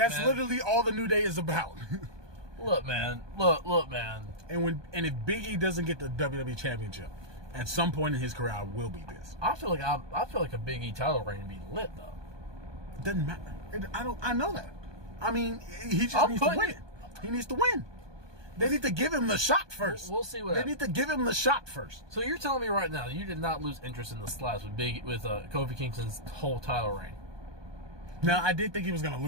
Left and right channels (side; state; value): left; late; 1.2 ms